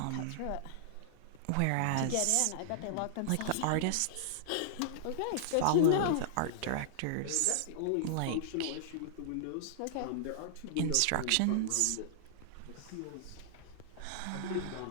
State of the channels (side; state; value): both; different; correlation -0.01